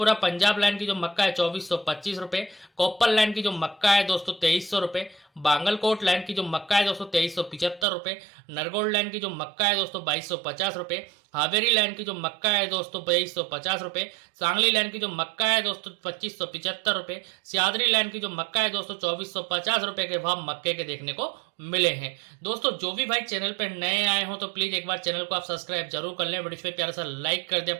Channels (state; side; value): drops out; left; at 7.9 s